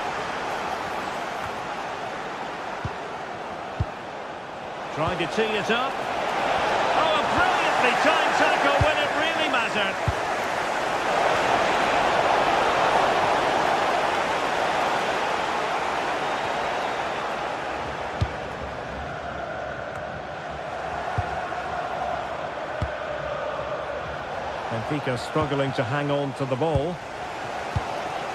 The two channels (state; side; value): identical; both; correlation 1.00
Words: Trying to tee it up. Oh, a brilliantly timed tackle when it really mattered. Benfica struggling to hang on to the ball.